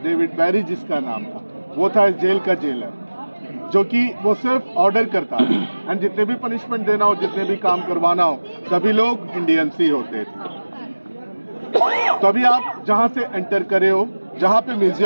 डेविड बैरी जिसका नाम था, वो था इस जेल का जेलर, जो कि वो सिर्फ ऑर्डर करता था. एंड जितने भी पनिशमेंट देना हो, जितने भी काम करवाना हो, सभी लोग इंडियंस ही होते थे. तो अभी आप जहां से एंटर करे हो, जहां पे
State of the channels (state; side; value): inverted; both; correlation -1.00